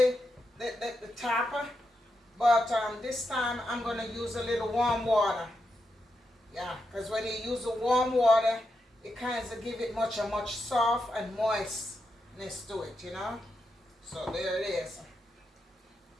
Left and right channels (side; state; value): both; normal; correlation 0.85